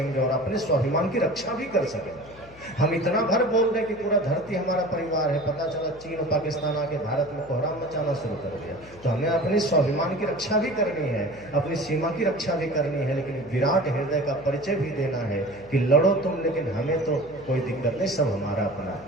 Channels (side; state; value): left; noise; hum, 21 dB below the sound